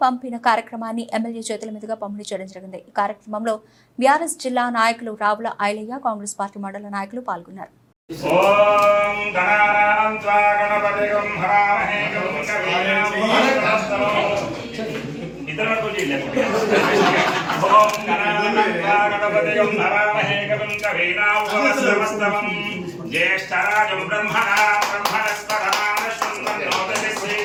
పంపిన కార్యక్రమాన్ని ఎమ్మెల్యే చేతుల మీదుగా పంపిణీ చేయడం జరిగింది. ఈ కార్యక్రమంలో బీఆర్ఎస్ జిల్లా నాయకులు రావుల ఐలయ్య, కాంగ్రెస్ పార్టీ మండల నాయకులు పాల్గొన్నారు.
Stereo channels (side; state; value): both; identical; correlation 1.00